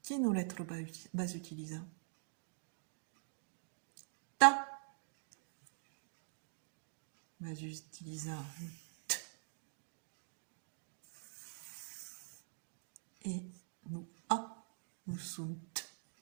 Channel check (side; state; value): left; silent; digital silence